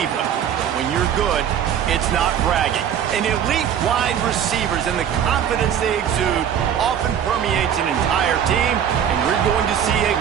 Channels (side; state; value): left; quieter; 9.0 dB